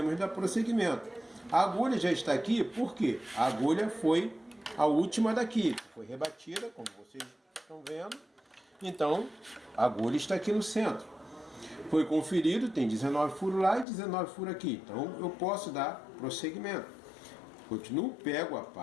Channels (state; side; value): drops out; right; at 13.9 s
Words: dar prosseguimento. A agulha já está aqui, por quê? A agulha foi a última daqui, foi rebatida, como vocês estão vendo. Então, a agulha está aqui no centro. Foi conferido, tem 19 furos lá e 19 furos aqui. Então, eu posso dar prosseguimento. Continuo, pego a